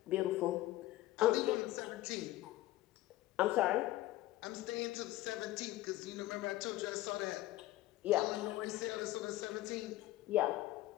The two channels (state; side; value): quieter; right; 16.1 dB